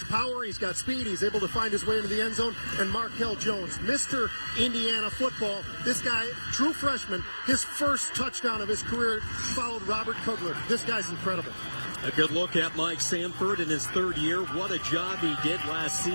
power. He's got speed. He's able to find his way into the end zone. And Markel Jones, Mr. Indiana football. This guy, true freshman, his first touchdown of his career followed Robert Kugler. This guy's incredible. A good look at Mike Sanford in his third year. What a job he did last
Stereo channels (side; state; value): both; inverted; correlation -1.00